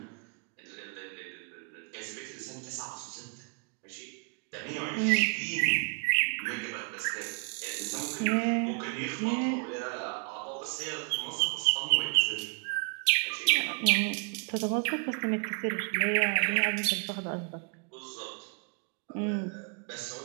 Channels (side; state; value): left; quieter; 38.4 dB